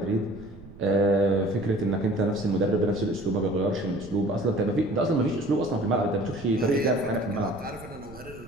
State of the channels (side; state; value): right; noise; rumble, 17 dB below the sound